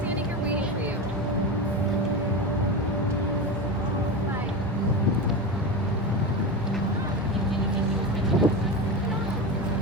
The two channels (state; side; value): normal; both; correlation 0.21